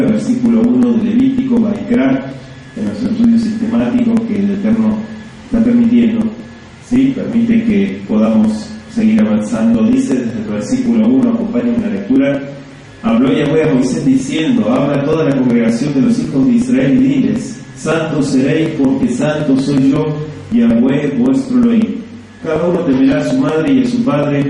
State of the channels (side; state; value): both; identical; correlation 1.00